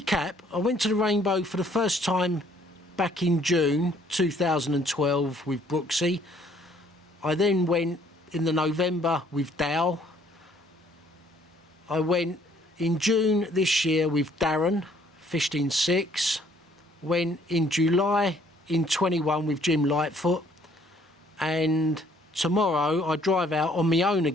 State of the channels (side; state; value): both; normal; correlation 0.62